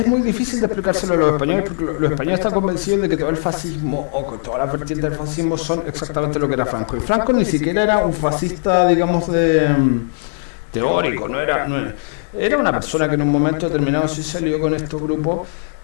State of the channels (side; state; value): right; silent; digital silence